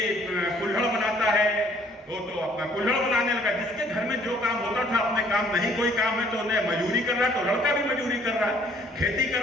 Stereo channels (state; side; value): normal; both; correlation 0.60